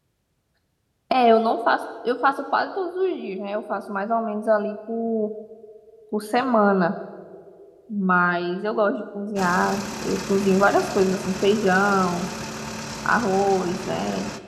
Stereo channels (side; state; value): both; identical; correlation 1.00